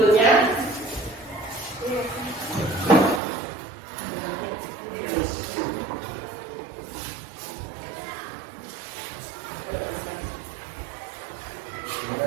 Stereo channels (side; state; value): left; drops out; at 3.2 s